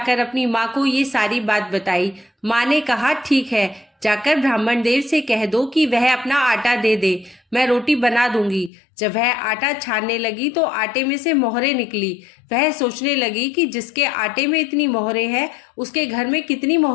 अपनी माँ को ये सारी बात बताई। माँ ने कहा, ठीक है, जाकर ब्राह्मण देव से कह दो कि वह अपना आटा दे दे, मैं रोटी बना दूंगी। जब वह आटा छानने लगी तो आटे में से मोहरें निकली। वह सोचने लगी कि जिसके आटे में इतनी मोहरें हैं उसके घर में कितनी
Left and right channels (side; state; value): right; drops out; at 8.7 s